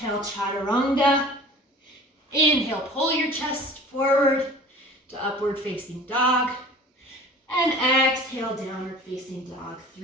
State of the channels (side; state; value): both; normal; correlation 0.44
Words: chaturanga. Inhale, pull your chest forward to upward facing dog. And exhale, downward facing dog.